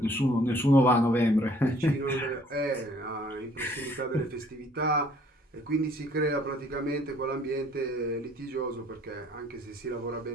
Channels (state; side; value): normal; both; correlation 0.59